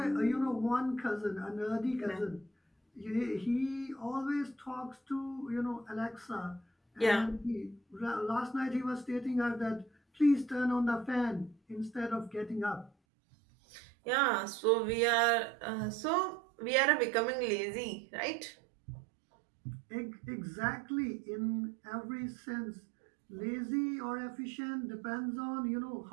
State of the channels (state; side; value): drops out; left; at 12.9 s